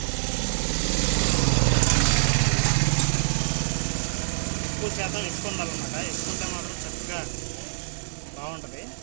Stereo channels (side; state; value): left; silent; digital silence